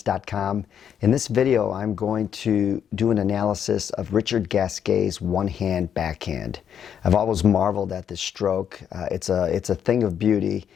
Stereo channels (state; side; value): quieter; right; 8.6 dB